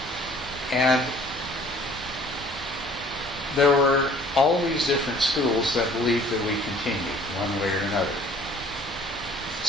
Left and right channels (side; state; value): both; normal; correlation 0.54